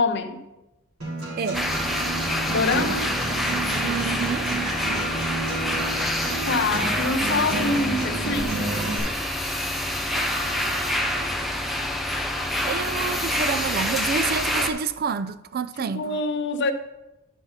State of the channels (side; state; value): both; normal; correlation 0.39